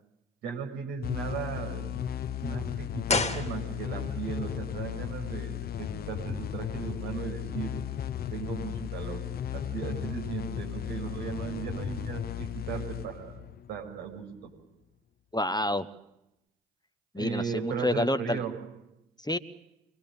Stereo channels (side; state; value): both; normal; correlation 0.44